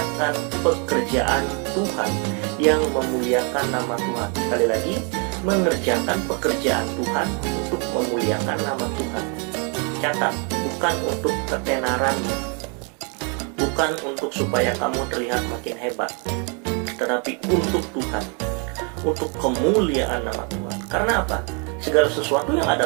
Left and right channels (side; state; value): left; quieter; 36.5 dB